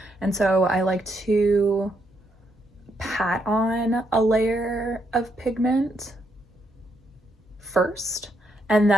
and so I like to pat on a layer of pigment first, and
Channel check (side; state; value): both; normal; correlation 0.76